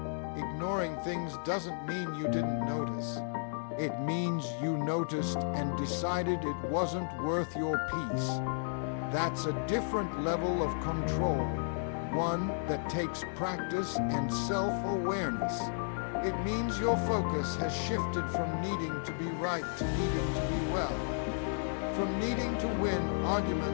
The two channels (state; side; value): silent; right; digital silence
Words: Ignoring things doesn't mean you didn't notice. It means you noticed and decided it wasn't worth your peace. That's a different level of control, one that takes practice and self-awareness. It means your focus has shifted from needing to be right to needing to be well, from needing to win